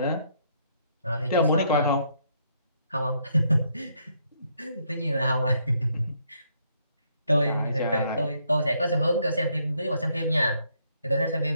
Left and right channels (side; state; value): both; inverted; correlation -0.72